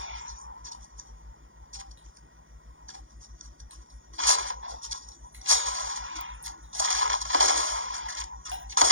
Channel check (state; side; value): late; left; 0.58 ms